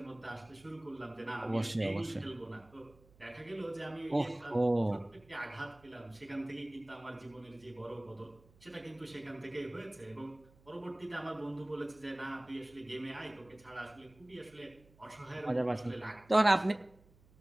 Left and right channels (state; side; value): noise; right; hum, 27 dB below the sound